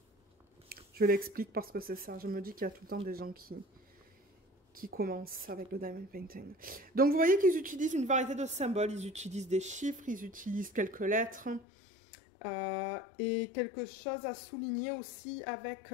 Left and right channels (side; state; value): right; drops out; at 11.7 s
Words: Je l'explique parce que c'est ça, je me dis qu'il y a tout le temps des gens qui commencent avec le diamond painting. Donc vous voyez qu'ils utilisent une variété de symboles, ils utilisent des chiffres, ils utilisent quelques lettres, et quelque chose à souligner aussi avec